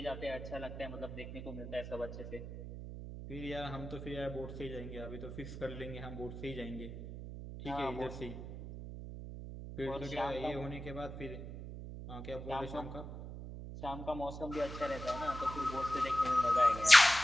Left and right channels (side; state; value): right; noise; hum, 9 dB below the sound